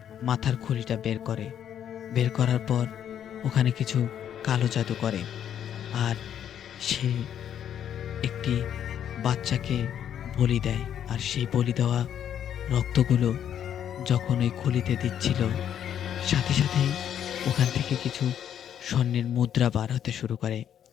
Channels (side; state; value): right; quieter; 9.6 dB